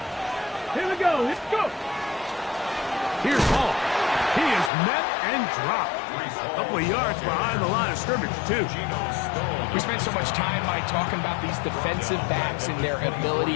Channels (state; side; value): drops out; right; at 4.7 s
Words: Here we go. Let's go. Here's Hall. He is met and dropped. A couple of yards behind the line of scrimmage, too. We spent so much time, Mike, talking about these defensive backs and their